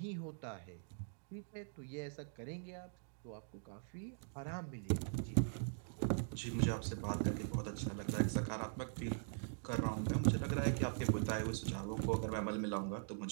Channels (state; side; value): silent; left; digital silence